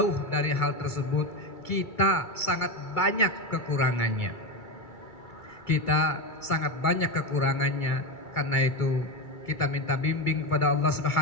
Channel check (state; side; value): late; right; 2.3 ms